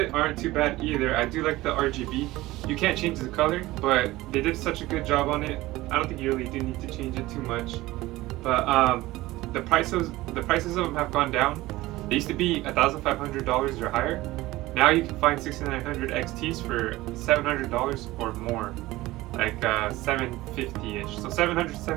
aren't too bad either. I do like the RGB. You can't change the color, but they did such a good job on it. I don't think you really do need to change it too much. But the prices of them have gone down. They used to be $1,500 or higher. Now you can find 6900 XTs for $700 or more, like $750-ish. So $700 to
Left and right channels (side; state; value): left; quieter; 18.2 dB